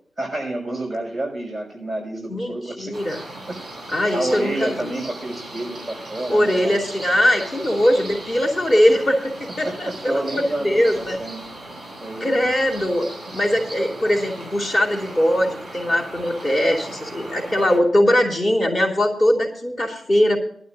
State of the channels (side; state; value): both; normal; correlation 0.95